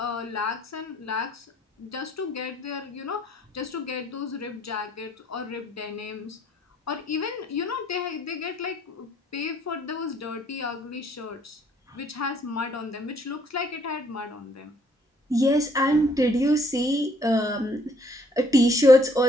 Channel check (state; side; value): normal; both; correlation 0.64